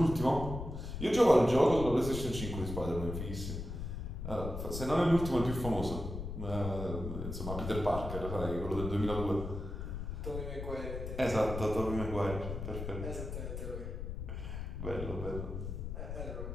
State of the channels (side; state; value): left; noise; rumble, 6 dB below the sound